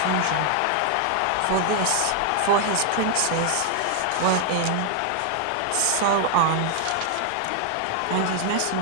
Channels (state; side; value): different; both; correlation 0.00